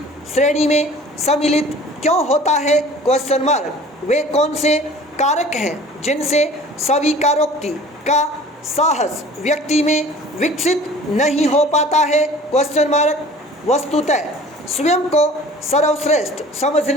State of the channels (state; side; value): normal; both; correlation 0.46